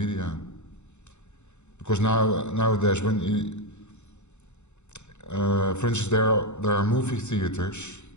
Because nowadays, when you, for instance, there are movie theaters,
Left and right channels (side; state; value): right; late; 0.83 ms